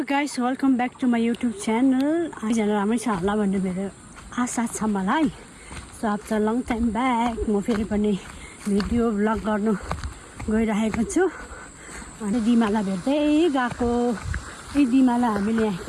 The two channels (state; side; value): identical; both; correlation 1.00